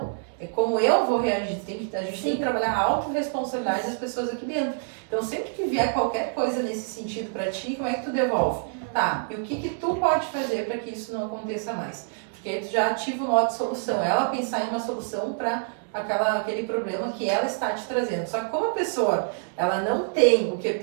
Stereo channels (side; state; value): left; silent; digital silence